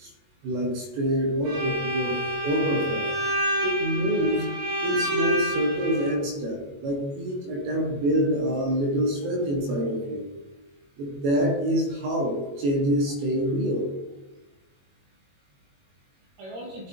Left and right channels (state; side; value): late; left; 21 ms